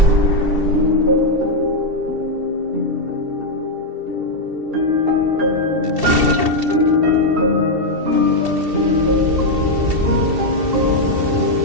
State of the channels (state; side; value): late; left; 2.7 ms